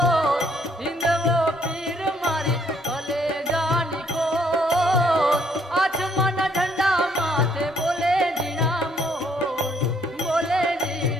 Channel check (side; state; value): both; normal; correlation 0.67